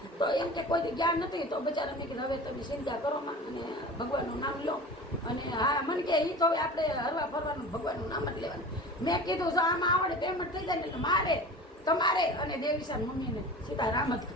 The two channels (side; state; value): both; normal; correlation 0.36